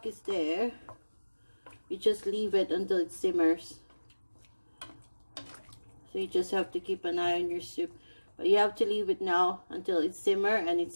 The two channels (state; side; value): inverted; both; correlation -1.00